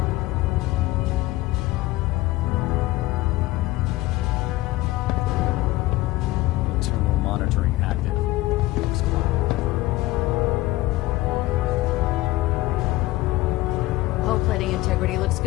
Internal monitoring active. Looks quiet. Hull plating integrity looks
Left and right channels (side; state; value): right; quieter; 18.3 dB